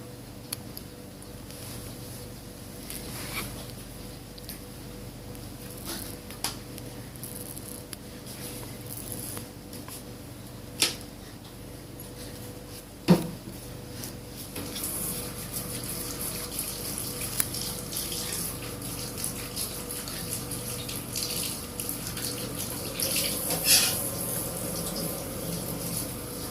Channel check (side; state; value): both; identical; correlation 1.00